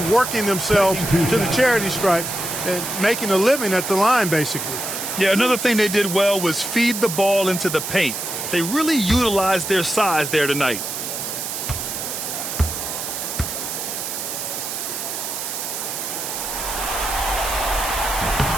working themselves to the charity stripe and making a living at the line, basically. Yeah, another thing they did well was feed the ball into the paint. They really utilized their size there tonight.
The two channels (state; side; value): noise; right; hiss, 5 dB below the sound